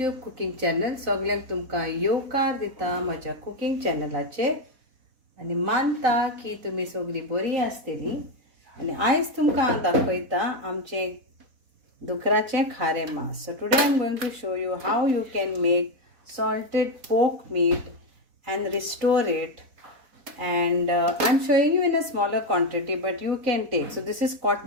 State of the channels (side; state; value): left; late; 4.1 ms